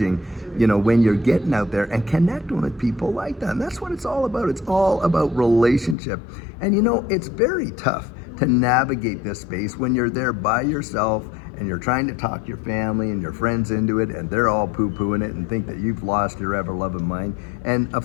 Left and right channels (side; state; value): right; drops out; at 6.0 s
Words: when you're getting out there and connecting with people like that. And that's what it's all about. It's all about relationship. And it's very tough to navigate this space when you're there by yourself and you're trying to talk your family and your friends into it, and they're all poo-pooing it and think that you've lost your ever-loving mind. And